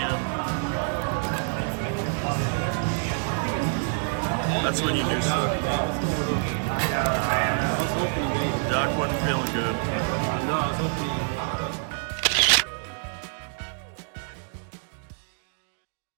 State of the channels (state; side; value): silent; left; 60 dB below the other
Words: That's when you do something. Doc wasn't feeling good.